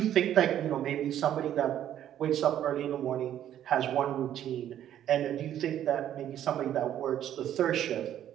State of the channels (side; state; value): left; quieter; 11.0 dB